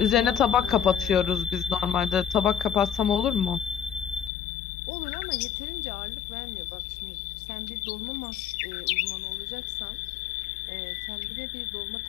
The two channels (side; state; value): right; drops out; at 4.3 s